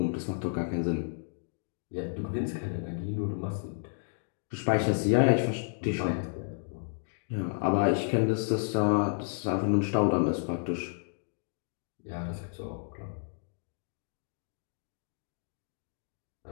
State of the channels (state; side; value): silent; right; digital silence